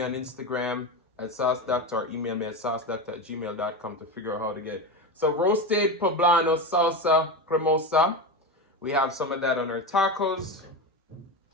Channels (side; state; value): both; normal; correlation 0.20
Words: on Instagram at Sauce Dackta or email me at saucedackta@gmail.com to figure out how to get it. So roasted poblano salsa cremosa. We have some of that on our tacos.